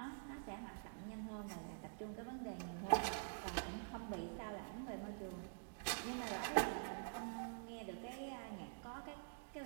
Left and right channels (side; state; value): left; silent; digital silence